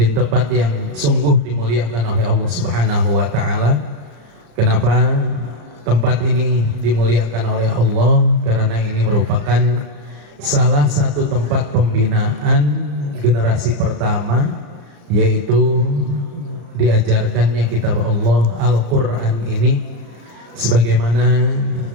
tempat yang sungguh dimuliakan oleh Allah Subhanahu wa Ta'ala. Kenapa tempat ini dimuliakan oleh Allah? Karena ini merupakan salah satu tempat pembinaan generasi pertama, yaitu diajarkannya kitab Allah Al-Quran ini, sebagaimana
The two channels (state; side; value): late; left; 35 ms